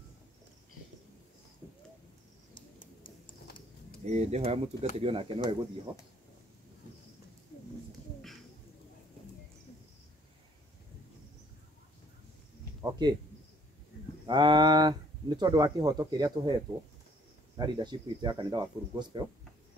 Ndĩhoya mũtungatĩri onake no egũthiĩ ho. Okay. Nĩ tondũ wa kĩhoto kĩrĩa tũhetwo na leadership itũ ya kanitha wa Full Gospel,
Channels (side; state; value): both; normal; correlation 0.60